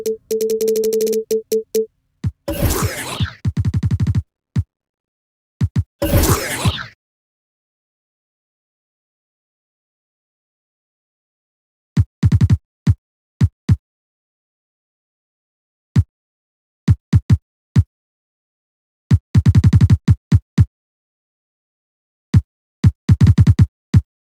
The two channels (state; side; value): identical; both; correlation 1.00